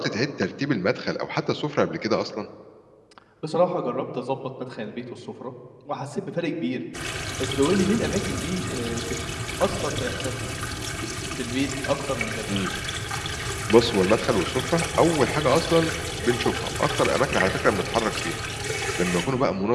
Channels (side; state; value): both; identical; correlation 1.00